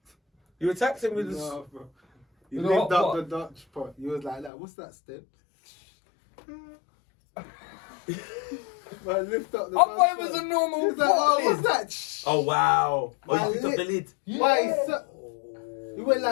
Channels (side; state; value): right; drops out; at 4.5 s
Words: You attacked him with the... Nah, bro. You With the lift hot up pot. the Dutch pot. You was like that. What's that step? Man, lift up the I Dutch thought it was pot. a normal He was like, pot oh, lid. what's that? Oh, wow. Oh, My you picked up the lip. lid. Why? Yeah. So, you went